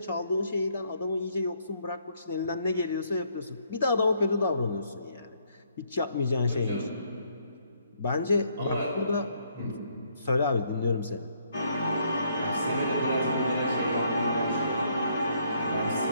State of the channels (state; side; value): inverted; both; correlation -0.69